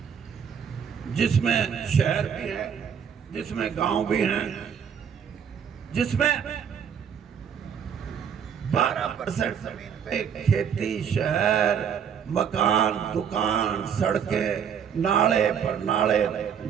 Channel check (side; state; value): left; quieter; 7.7 dB